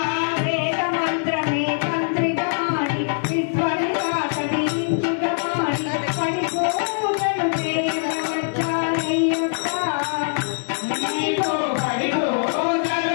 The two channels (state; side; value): silent; right; 61 dB below the other